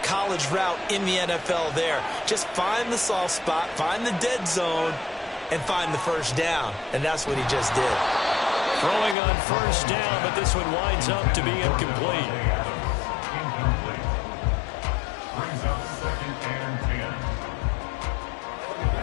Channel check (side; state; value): right; drops out; at 9.2 s